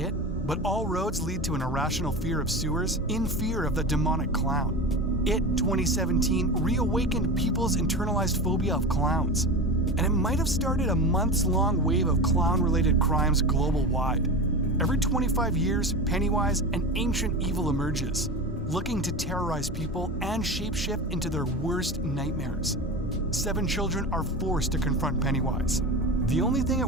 but all roads lead to an irrational fear of sewers in fear of the demonic clown. It 2017 reawakened people's internalized phobia of clowns, and it might have started a months-long wave of clown-related crimes global-wide. Every 25 years, Pennywise, an ancient evil, emerges, looking to terrorize people and shapeshift into their worst nightmares. 7 children are forced to confront Pennywise. The only thing it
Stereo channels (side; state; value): both; normal; correlation 0.26